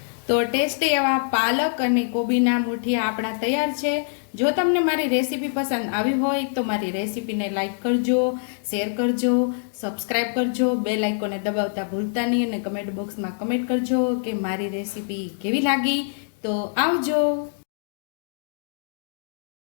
તો ટેસ્ટી એવા પાલક અને કોબીના મુઠિયા આપણા તૈયાર છે. જો તમને મારી રેસીપી પસંદ આવી હોય તો મારી રેસીપીને લાઈક કરજો, શેર કરજો, સબસ્ક્રાઈબ કરજો, બેલ આઇકોનને દબાવતા ભૂલતા નહીં, અને કમેન્ટ બોક્સમાં કમેન્ટ કરજો કે મારી રેસીપી કેવી લાગી. તો આવજો.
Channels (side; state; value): right; silent; digital silence